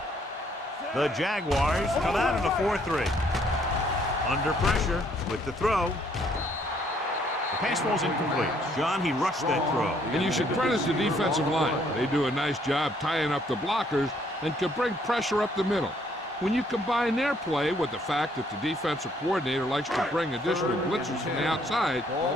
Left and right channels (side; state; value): both; normal; correlation 0.66